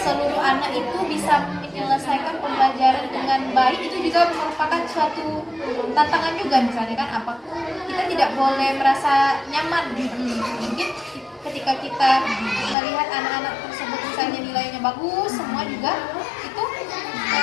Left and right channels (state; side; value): drops out; right; at 12.8 s